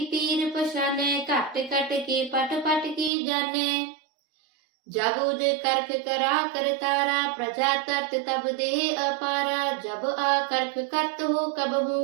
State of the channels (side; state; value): left; drops out; at 3.1 s